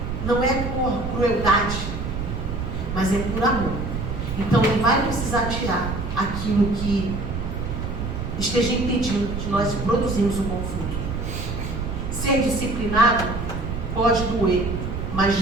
Não é por crueldade, mas é por amor. Então ele vai precisar tirar aquilo que esteja impedindo de nós produzirmos um bom fruto. Ser disciplinado pode doer, mas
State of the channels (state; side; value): noise; right; rumble, 4 dB below the sound